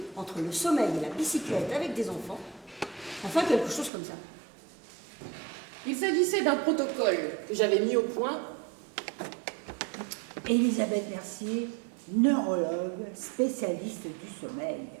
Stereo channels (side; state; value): left; drops out; at 3.9 s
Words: entre le sommeil et la bicyclette avec des enfants. Enfin, quelque chose comme ça. Il s'agissait d'un protocole que j'avais mis au point. Elisabeth Mercier, neurologue, spécialiste du sommeil.